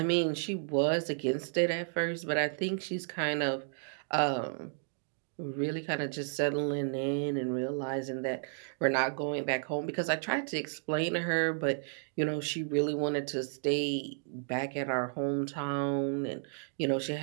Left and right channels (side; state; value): left; silent; digital silence